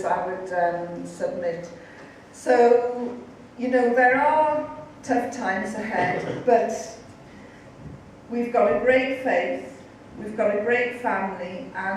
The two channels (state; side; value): identical; both; correlation 1.00